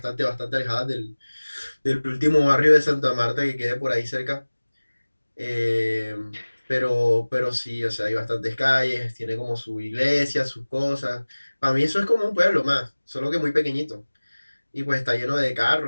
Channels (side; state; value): both; inverted; correlation -1.00